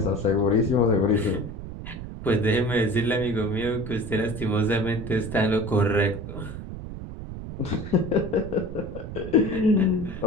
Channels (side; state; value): right; noise; rumble, 10 dB below the sound